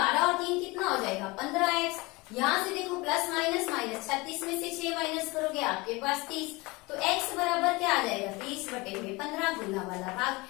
और 3 कितना हो जाएगा, 15x। यहाँ से देखो प्लस माइनस माइनस, 36 में से 6 माइनस करोगे आपके पास 30। तो x बराबर क्या आ जाएगा, 30 बटे में 15, गुना वाला भाग,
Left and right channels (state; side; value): quieter; right; 24.0 dB